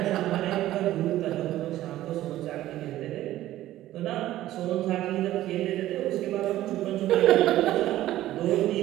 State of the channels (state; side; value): quieter; left; 14.4 dB